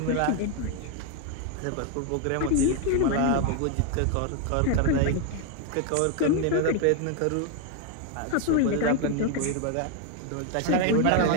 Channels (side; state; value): both; different; correlation 0.01